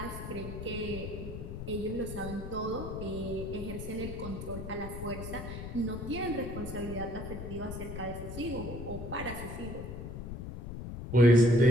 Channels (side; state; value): left; noise; rumble, 8 dB below the sound